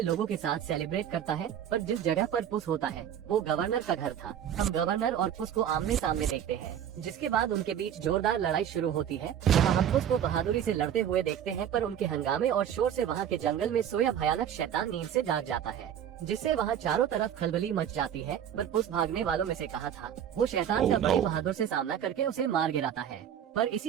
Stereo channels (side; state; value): left; quieter; 9.6 dB